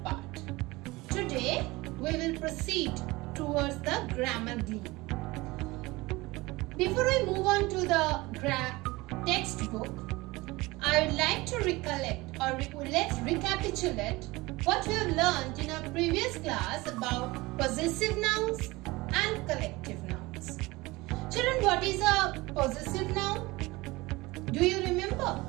part. Today, we will proceed towards the grammar Glee. Before I move on to the textbook, I would like to recollect or let's recapitulate what we have learned in our previous class about possessive nouns and collective nouns. Children, what is a possessive noun? Do you remember?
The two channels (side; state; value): left; quieter; 21.5 dB